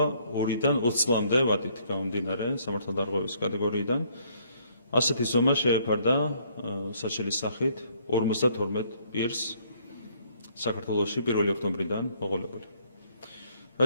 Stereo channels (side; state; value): both; inverted; correlation -0.65